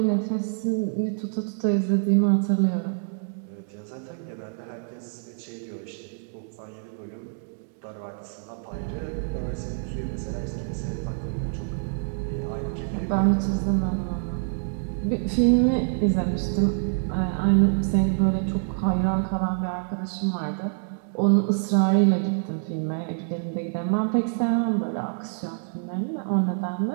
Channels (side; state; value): left; silent; digital silence